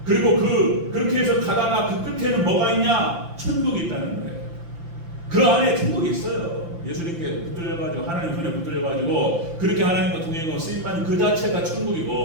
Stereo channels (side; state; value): left; late; 5.9 ms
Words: 그리고 그렇게 해서 가다가 그 끝에는 뭐가 있냐? 천국이 있다는 거예요. 그 안에 천국이 있어요. 예수님께 붙들려가지고 하나님 손에 붙들려가지고 그렇게 하나님과 동행하고 쓰임 받는 그 자체가